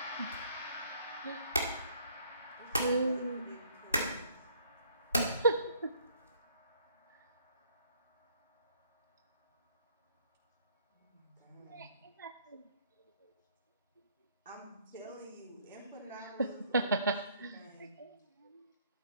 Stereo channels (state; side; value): inverted; both; correlation -0.63